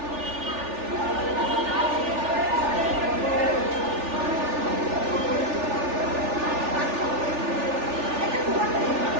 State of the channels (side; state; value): left; late; 3.4 ms